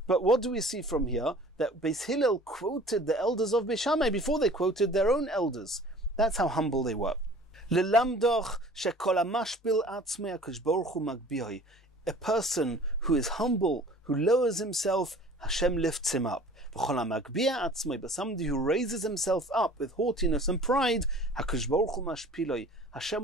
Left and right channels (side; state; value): both; normal; correlation 0.47